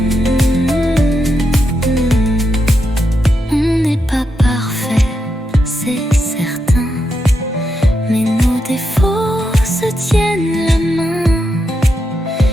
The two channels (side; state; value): both; normal; correlation 0.84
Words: On n'est pas parfait, c'est certain, mais nos défauts se tiennent la main.